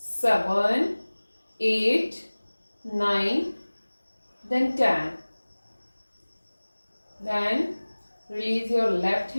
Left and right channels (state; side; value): inverted; both; correlation -1.00